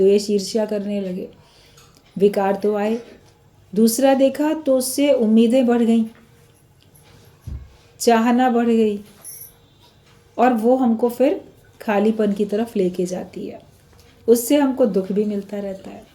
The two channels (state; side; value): identical; both; correlation 1.00